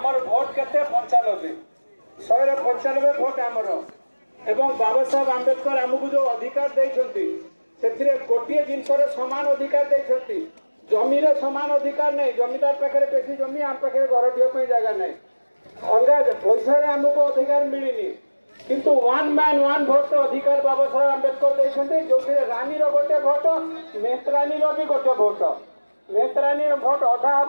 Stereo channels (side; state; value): both; inverted; correlation -1.00